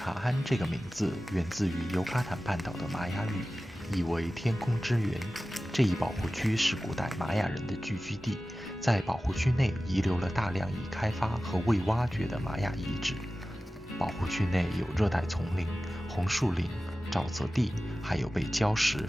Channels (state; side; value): normal; both; correlation 0.95